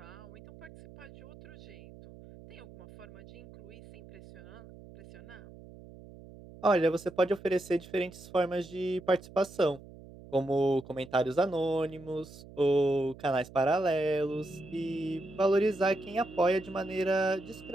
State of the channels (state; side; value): noise; right; hum, 18 dB below the sound